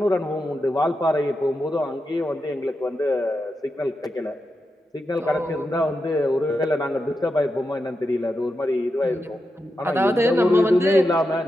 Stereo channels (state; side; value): normal; both; correlation 0.88